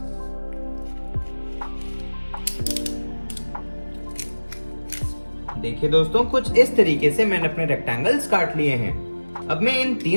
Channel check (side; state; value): both; inverted; correlation -1.00